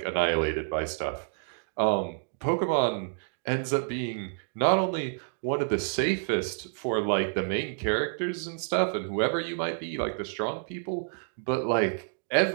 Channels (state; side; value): silent; left; digital silence